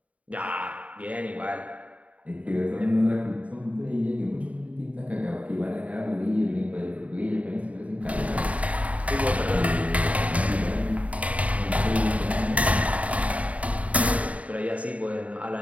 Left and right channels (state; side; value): late; left; 0.067 ms